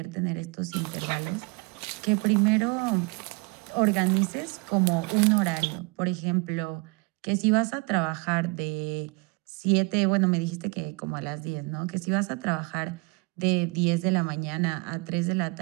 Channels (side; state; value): left; quieter; 28.7 dB